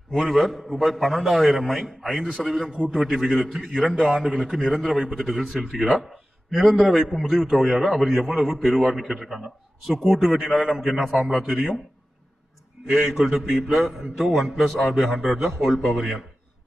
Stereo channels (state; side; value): normal; both; correlation 0.95